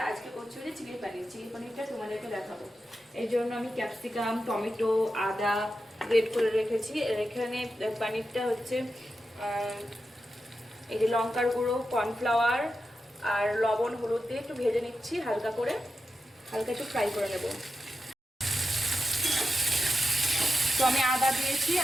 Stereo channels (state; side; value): normal; both; correlation 0.90